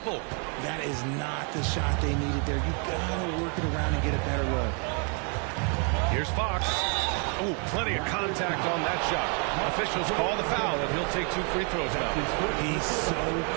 That is not the shot they needed there. You gotta work it around and get a better look. Here's Fox. Oh, plenty of contact on that shot. Officials call the foul, and he'll take 2 free throws now. He's so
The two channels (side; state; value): left; quieter; 38.0 dB